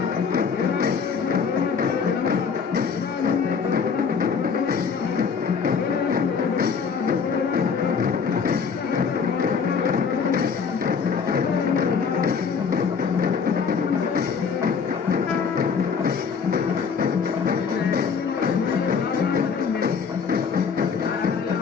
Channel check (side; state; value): right; quieter; 6.0 dB